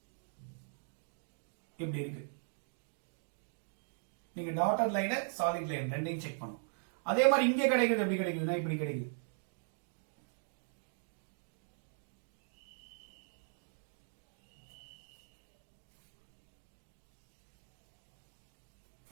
இப்படி இருக்கு. நீங்க டாட்டட் லைன், சாலிட் லைன் ரெண்டையும் செக் பண்ணும். அதே மாதிரி இங்க கிடைக்குது, எப்படி கிடைக்குதுன்னா இப்படி கிடைக்குது.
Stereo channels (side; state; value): left; silent; digital silence